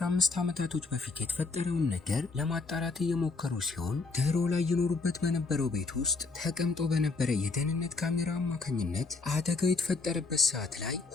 ዓመታቶች በፊት የተፈጠረውን ነገር ለማጣራት እየሞከሩ ሲሆን ድሮ ላይ ይኖሩበት በነበረው ቤት ውስጥ ተቀምጦ በነበረ የደህንነት ካሜራ አማካኝነት አደጋው የተፈጠረበት ሰዓት ላይ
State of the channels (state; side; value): quieter; right; 3.9 dB